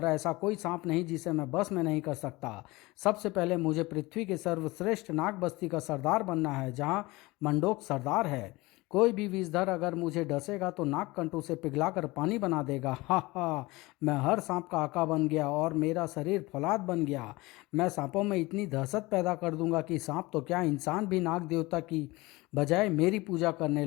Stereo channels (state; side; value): quieter; right; 21.8 dB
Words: ऐसा कोई सांप नहीं जिसे मैं बस में नहीं कर सकता। सबसे पहले मुझे पृथ्वी के सर्वश्रेष्ठ नाग बस्ती का सरदार बनना है, जहाँ मंडोक सरदार है। कोई भी विषधर अगर मुझे डसेगा तो नागकंठ उसे पिघलाकर पानी बना देगा। हा हा। मैं हर सांप का आका बन गया और मेरा शरीर फौलाद बन गया। मैं सांपों में इतनी दहशत पैदा कर दूंगा कि सांप तो क्या, इंसान भी नाग देवता की बजाय मेरी पूजा करने